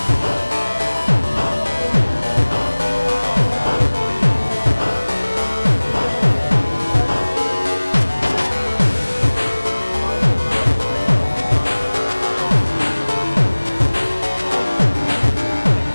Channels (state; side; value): inverted; both; correlation -1.00